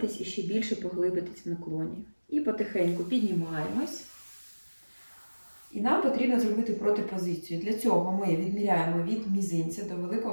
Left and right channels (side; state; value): both; inverted; correlation -1.00